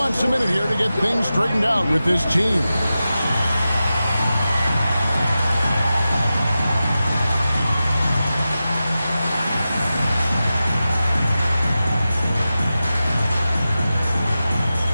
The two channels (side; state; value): both; inverted; correlation -0.93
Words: a minute here to get things straightened out with his team.